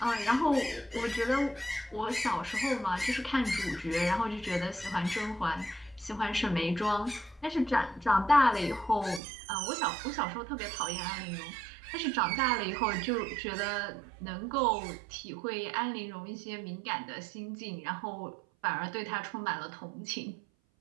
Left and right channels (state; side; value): drops out; left; at 9.2 s